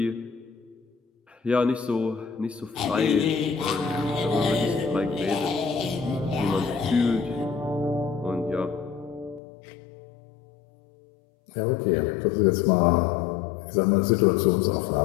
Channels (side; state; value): right; drops out; at 9.4 s